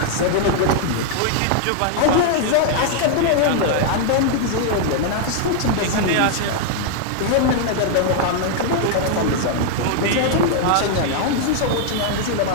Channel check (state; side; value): different; both; correlation -0.01